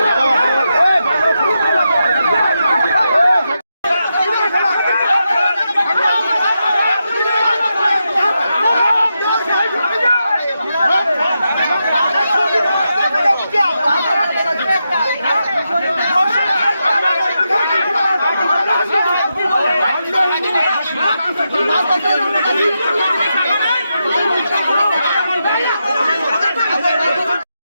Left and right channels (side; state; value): both; inverted; correlation -0.86